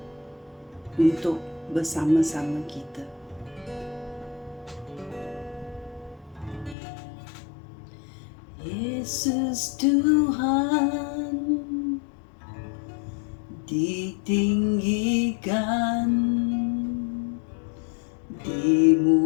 untuk bersama-sama kita. Yesus Tuhan ditinggikan,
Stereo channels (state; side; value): drops out; right; at 6.8 s